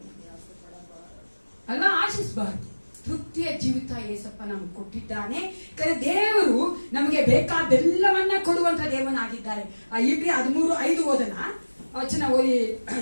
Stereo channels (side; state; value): both; inverted; correlation -1.00